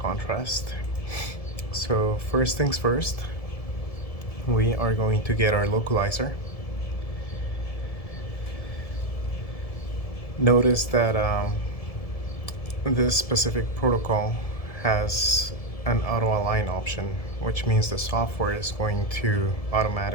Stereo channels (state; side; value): late; right; 1.7 ms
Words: So first things first, we are going to get our localizer. Notice that this specific protocol has an auto align option, which means the software is going to